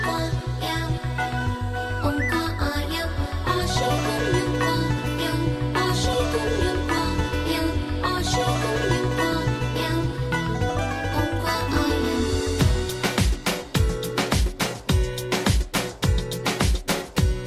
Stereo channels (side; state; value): both; identical; correlation 1.00